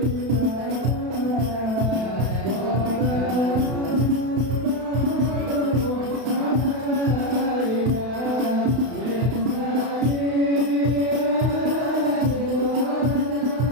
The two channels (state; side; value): late; left; 32 ms